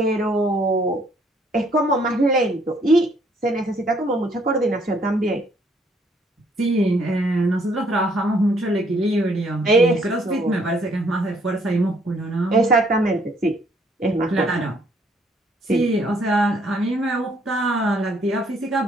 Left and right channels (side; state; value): both; normal; correlation 0.66